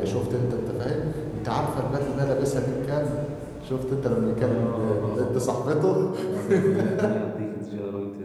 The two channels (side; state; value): both; identical; correlation 1.00